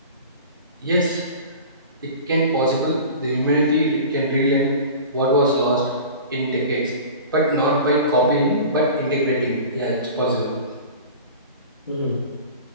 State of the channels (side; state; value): both; inverted; correlation -0.38